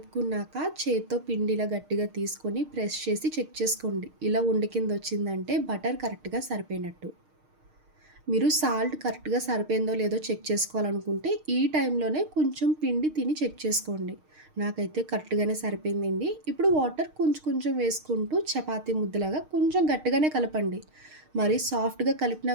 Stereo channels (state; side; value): late; left; 6.5 ms